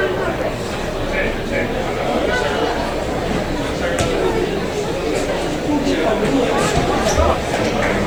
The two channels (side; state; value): right; noise; hiss, 28 dB below the sound